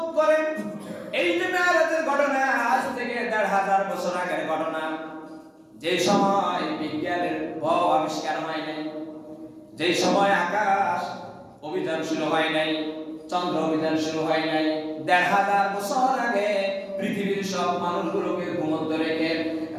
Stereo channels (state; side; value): identical; both; correlation 1.00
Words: করেন। এই যে মেরাজের ঘটনা আজ থেকে 1500 বছর আগের ঘটনা। যে সময় বিজ্ঞানের আবিষ্কার হয় নাই, যে সময় আকাশ অভিযান শুরু হয় নাই, চন্দ্র অভিযান শুরু হয় নাই, 1500 বছর আগে পৃথিবীর সব মানুষগুলোকে ঘুমন্ত রেখে